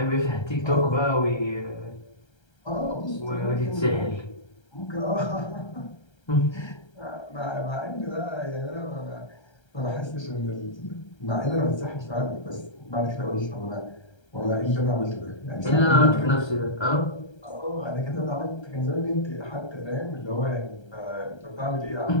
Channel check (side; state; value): right; late; 1.3 ms